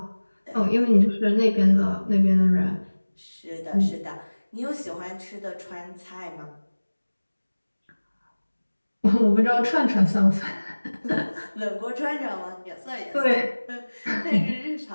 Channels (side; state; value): both; inverted; correlation -1.00